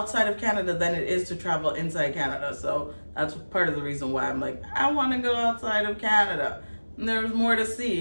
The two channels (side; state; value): both; inverted; correlation -1.00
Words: of Canada than it is to travel inside Canada. So that's part of the reason why I'm like, I want to go outside of Canada. And there's more to